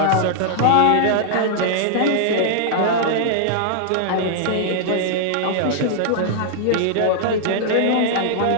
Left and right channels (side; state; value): both; different; correlation -0.01